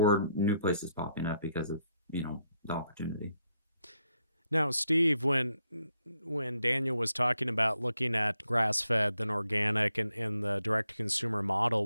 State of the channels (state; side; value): inverted; both; correlation -0.78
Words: new places popping up because of the opportunity. Now, Steve, when Daniel was talking about looking at grass-fed then organic and the direct-to-consumer model,